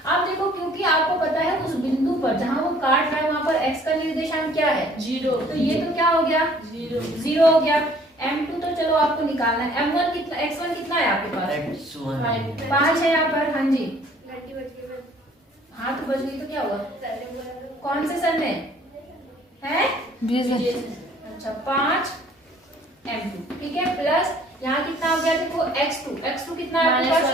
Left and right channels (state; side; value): normal; both; correlation 0.57